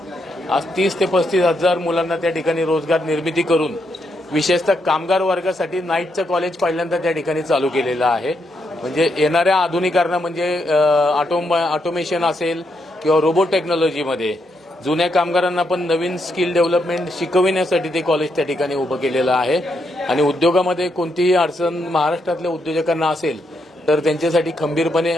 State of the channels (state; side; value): normal; both; correlation 0.79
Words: आज 30 ते 35,000 मुलांना त्या ठिकाणी रोजगार निर्मिती करून विशेषतः कामगार वर्गासाठी नाईटचं कॉलेज पहिल्यांदा त्या ठिकाणी चालू केलेलं आहे। म्हणजे येणाऱ्या आधुनिकरणा म्हणजे ऑटोमेशन असेल किंवा रोबोट टेक्नॉलॉजीमध्ये जुन्या कामगारांना पण नवीन स्किल डेव्हलपमेंट शिकविण्यासाठी ते कॉलेज त्या ठिकाणी उभं केलेलं आहे आणि उद्योगामध्ये कोणतीही अडचण महाराष्ट्रातल्या उद्योजकांना असेल तर त्यांच्यासाठी खंबीरपणे